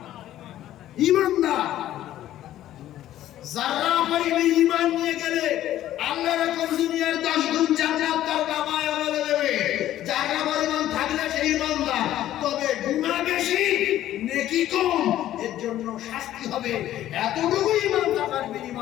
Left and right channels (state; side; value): quieter; right; 13.0 dB